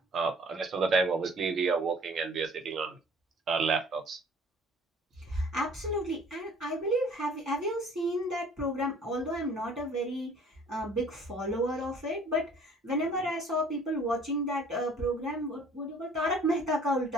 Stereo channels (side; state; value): both; normal; correlation 0.53